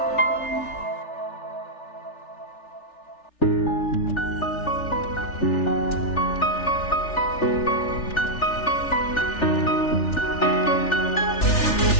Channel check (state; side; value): late; right; 3.4 ms